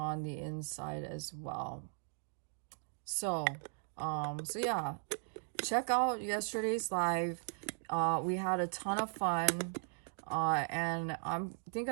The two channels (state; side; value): silent; left; 53 dB below the other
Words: the inside as well. So so yeah, check out yesterday's live. We had a ton of fun, and I think